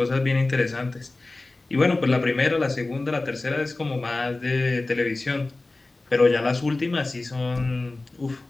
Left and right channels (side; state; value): right; quieter; 3.1 dB